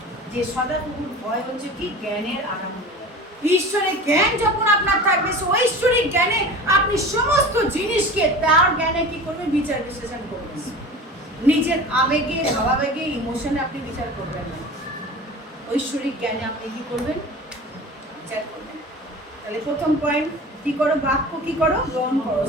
যে সদাপ্রভুর ভয় হচ্ছে কি? জ্ঞানের আরম্ভ। ঈশ্বরের জ্ঞান যখন আপনার থাকবে, সে ঐশ্বরিক জ্ঞানে আপনি সমস্ত জিনিসকে তার জ্ঞানে কি করবেন? বিচার বিশ্লেষণ করবেন। নিজের আবেগে, ভাবাবেগে, ইমোশনে আপনি বিচার করবেন না, ঐশ্বরিক জ্ঞানে আপনি কি করবেন? বিচার করবেন। তাহলে প্রথম পয়েন্ট কি করো? বাক্য কি করো? গ্রহণ করো।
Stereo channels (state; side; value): normal; both; correlation 0.36